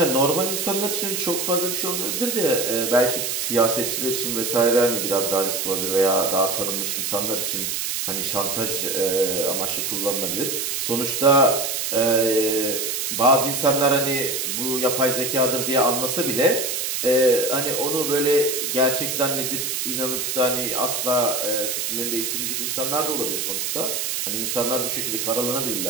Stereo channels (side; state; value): right; noise; hiss, 1 dB below the sound